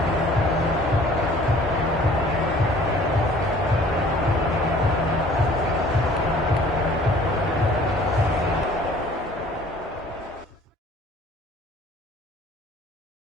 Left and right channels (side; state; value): both; normal; correlation 0.52